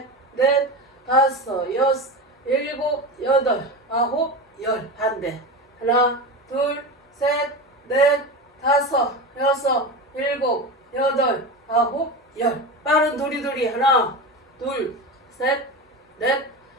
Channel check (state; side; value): normal; both; correlation 0.24